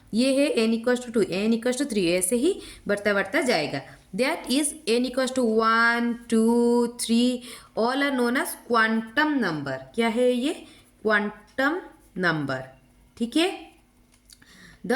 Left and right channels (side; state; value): both; identical; correlation 1.00